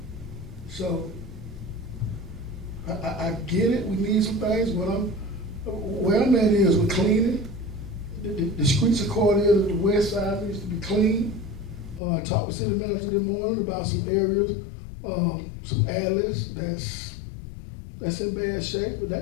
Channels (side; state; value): right; drops out; at 12.0 s